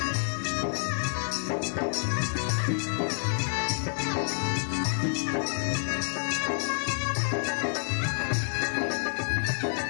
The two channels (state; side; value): silent; right; 59 dB below the other